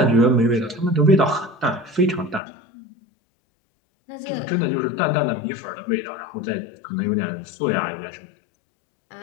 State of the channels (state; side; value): drops out; right; at 2.4 s